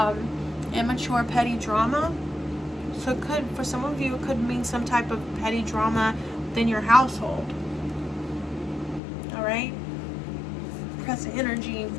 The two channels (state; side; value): drops out; right; at 9.0 s